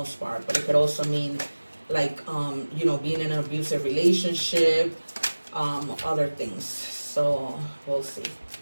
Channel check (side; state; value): both; inverted; correlation -1.00